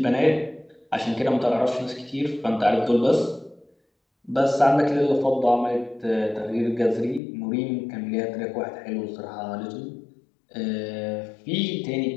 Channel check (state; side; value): drops out; right; at 7.2 s